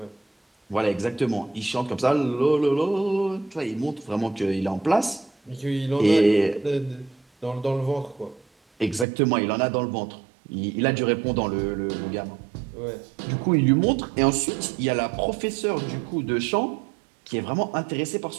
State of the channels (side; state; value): left; drops out; at 9.1 s